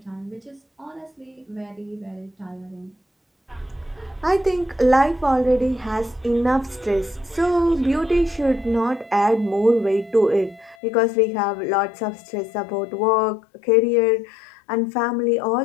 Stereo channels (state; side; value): drops out; right; at 10.8 s